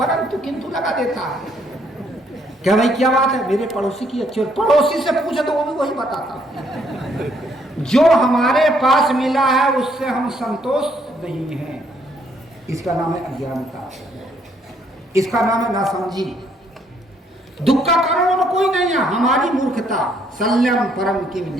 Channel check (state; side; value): normal; both; correlation 0.69